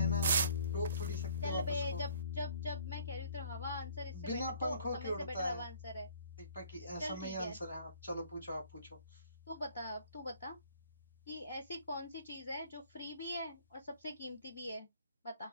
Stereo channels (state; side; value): inverted; both; correlation -0.55